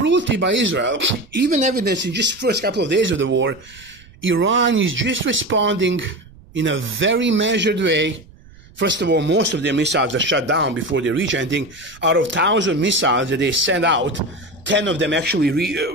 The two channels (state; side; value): noise; right; rumble, 25 dB below the sound